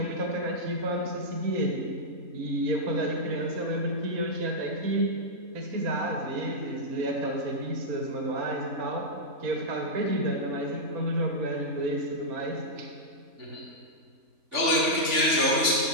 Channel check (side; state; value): left; late; 3.5 ms